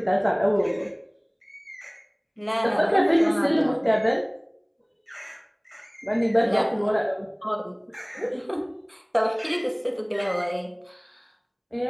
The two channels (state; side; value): identical; both; correlation 1.00